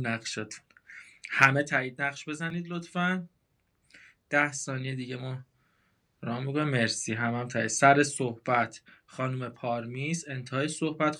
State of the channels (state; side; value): identical; both; correlation 1.00